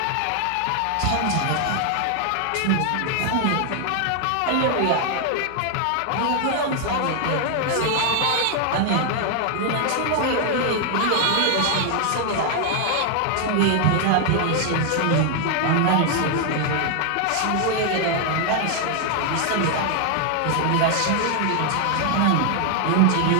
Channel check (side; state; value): both; different; correlation 0.00